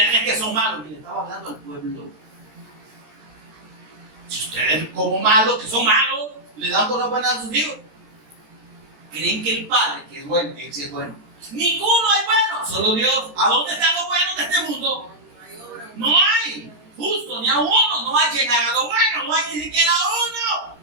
que son malos, y le estaba hablando al pueblo. Si ustedes como malos, que son malos, le dan por la buena a sus hijos, creen que el Padre, que es bueno, que sí es bueno. Ninguno es bueno, solo Dios. ¿A dónde están los buenos de este mundo? No hay, justo, ni a uno. No hay quien haga lo bueno, no hay ni siquiera uno.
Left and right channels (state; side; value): late; left; 14 ms